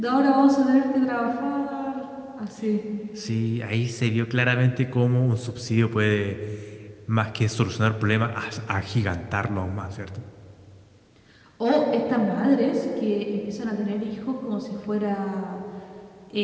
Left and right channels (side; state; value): both; identical; correlation 1.00